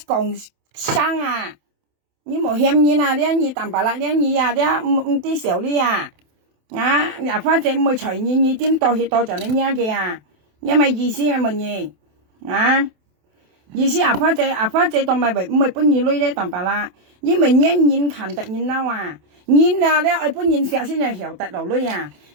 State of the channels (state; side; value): late; left; 28 ms